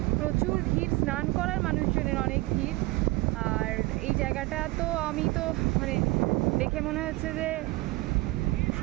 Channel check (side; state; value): left; quieter; 22.1 dB